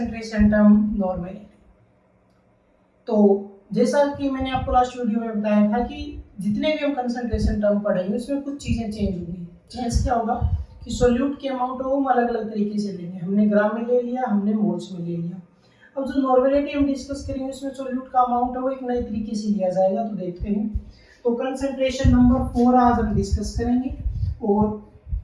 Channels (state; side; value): identical; both; correlation 1.00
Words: टर्म नॉर्मेलिटी। तो जैसा कि मैंने आपको लास्ट वीडियो में बताया था कि जितने भी हम कंसंट्रेशन टर्म पढ़ेंगे उसमें कुछ चीज़ें चेंज होंगी। चेंज क्या होगा कि सोल्यूट के अमाउंट को हम अलग अलग तरीके से लेंगे। हमने ग्राम में ले लिया, हमने मोल्स में ले लिया। अब जो नॉर्मेलिटी हम डिस्कस करेंगे उसमें सोल्यूट का अमाउंट है वो एक नए तरीके से लिया जाएगा। तो देखते हैं। तो कंसंट्रेशन नंबर 4 आज हम डिस्कस करेंगे और